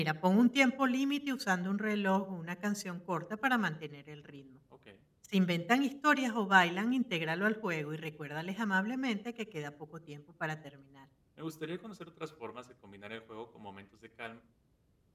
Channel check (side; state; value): both; identical; correlation 1.00